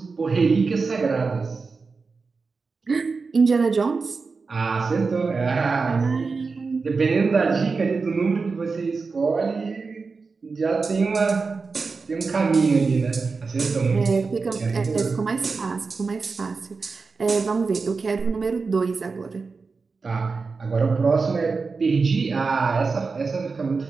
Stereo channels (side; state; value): left; quieter; 4.5 dB